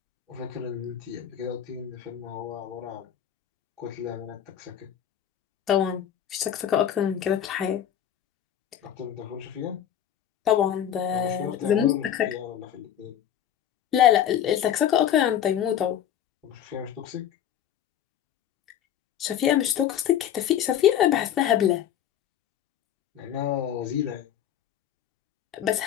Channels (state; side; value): quieter; right; 10.2 dB